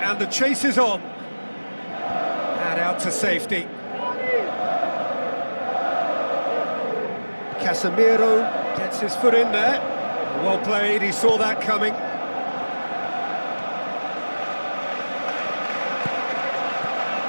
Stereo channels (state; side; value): inverted; both; correlation -1.00